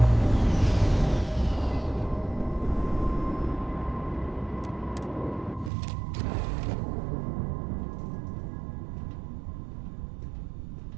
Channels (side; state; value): left; drops out; at 5.7 s